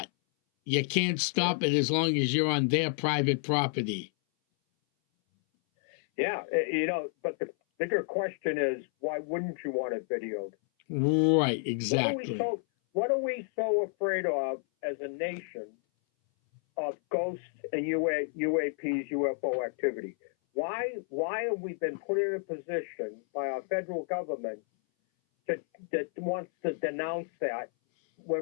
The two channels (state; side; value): silent; right; 58 dB below the other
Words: You can't stop it as long as you're on their private property. Yeah, but the bigger question is, why wouldn't you want it videoed? Right, exactly. What are we so afraid of as a nation of ghosts and UAPs, UFO activity? Why have we been put in a position by our federal government that wants to denounce that